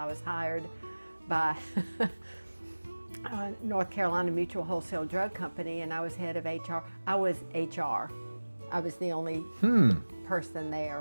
was hired by North Carolina Mutual Wholesale Drug Company, and I was head of HR. I was HR. I was the only person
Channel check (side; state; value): both; inverted; correlation -1.00